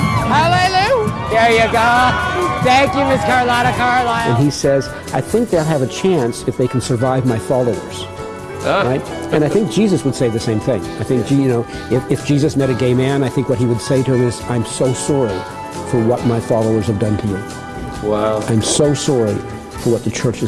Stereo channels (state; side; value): identical; both; correlation 1.00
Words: Hallelujah! There you go. Thank you, Miss Carlotta Carlisle. And he says, I think they'll have a chance if they can survive my followers. Right? And I think Jesus would say the same thing. I think, if Jesus met a gay man, I think what he would say to him is, I'm so sorry for what my followers have done to you. Wow. I'm so sorry for what the church